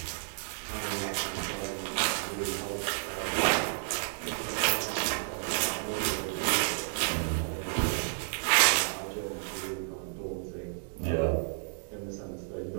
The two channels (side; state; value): left; silent; digital silence